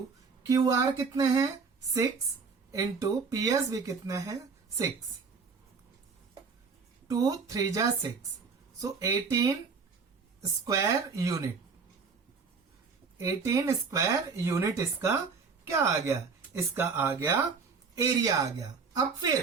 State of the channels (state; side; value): quieter; left; 5.1 dB